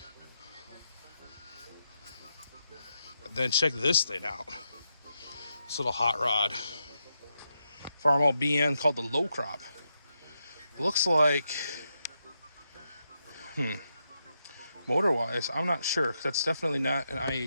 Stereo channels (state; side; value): inverted; both; correlation -0.83